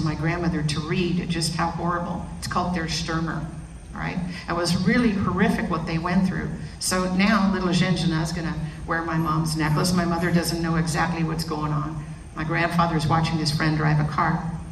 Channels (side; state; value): both; identical; correlation 1.00